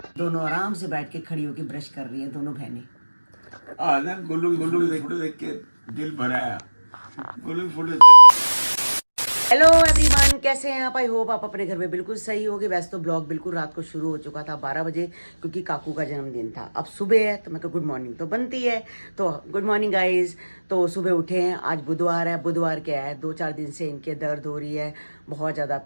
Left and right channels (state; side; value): inverted; both; correlation -1.00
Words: दोनों आराम से बैठ के खड़ी होके ब्रश कर रही है दोनों बहनें। ना गोलू गोलू फोटो देख के दिल भरा है। गोलू फोटो। हेलो एवरीवन, कैसे हैं आप? आई होप आप अपने घर में बिल्कुल सही होगे। वैसे तो ब्लॉग बिल्कुल रात को शुरू हो चुका था 12 बजे, क्योंकि काकू का जन्मदिन था। अब सुबह है तो मैं गुड मॉर्निंग तो बनती है, तो गुड मॉर्निंग गाइज। तो सुबह उठे हैं, आज बुधवार है। बुधवार क्या है, 2-4 दिन से इनके दर्द हो रही है बहुत ज़्यादा